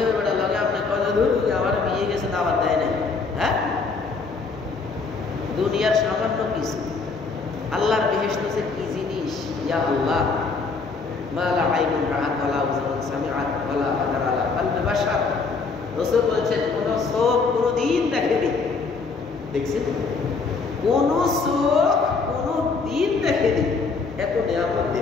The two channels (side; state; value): right; quieter; 4.5 dB